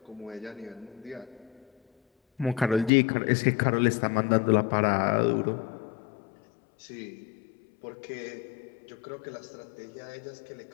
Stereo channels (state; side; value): drops out; right; at 2.9 s